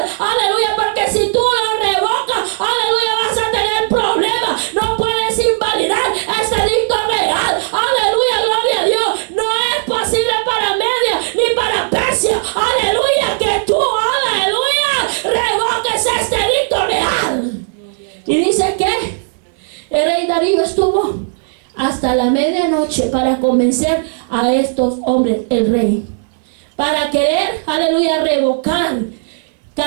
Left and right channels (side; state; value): left; silent; digital silence